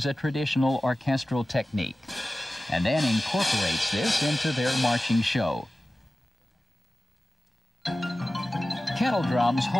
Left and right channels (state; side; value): normal; both; correlation 0.96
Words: a traditional orchestral technique and then incorporates this into their marching show. Kettle drums